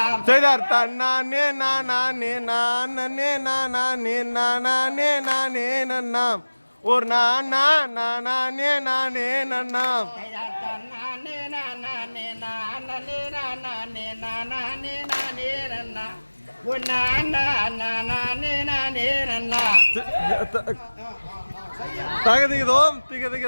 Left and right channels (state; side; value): inverted; both; correlation -1.00